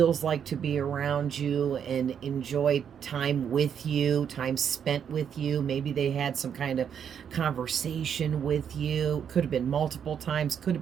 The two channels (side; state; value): left; quieter; 8.1 dB